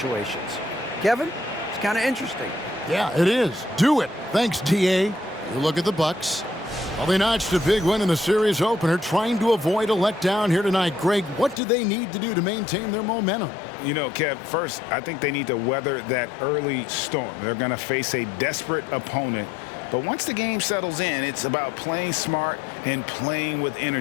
Kevin, it's kind of interesting. Yeah, it is. Do it. Thanks, TA. You look at the Bucks. Well, they notched a big win in the series opener, trying to avoid a letdown here tonight. Greg, what do they need to do to maintain their momentum? You know, Kev, first, I think they need to weather that early storm. They're going to face a desperate opponent. But once the game settles in, it's about playing smart and playing with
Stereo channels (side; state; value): right; drops out; at 11.6 s